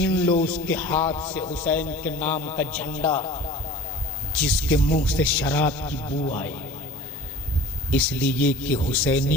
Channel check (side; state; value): both; normal; correlation 0.41